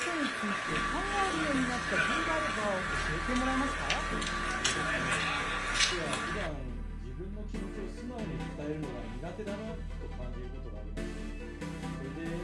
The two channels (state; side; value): identical; both; correlation 1.00